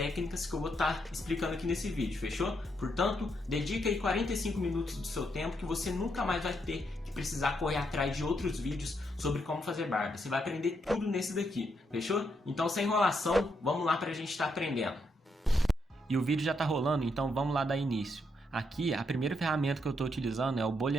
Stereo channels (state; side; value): normal; both; correlation 0.78